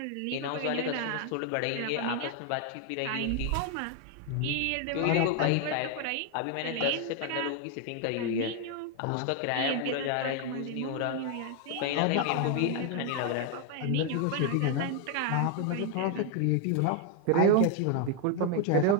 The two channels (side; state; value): both; different; correlation 0.00